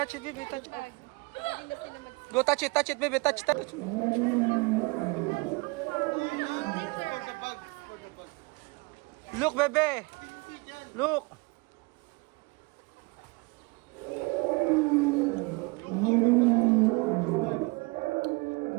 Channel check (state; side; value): quieter; left; 27.7 dB